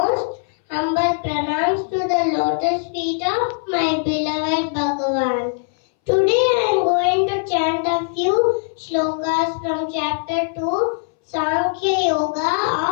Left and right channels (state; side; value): silent; right; 63 dB below the other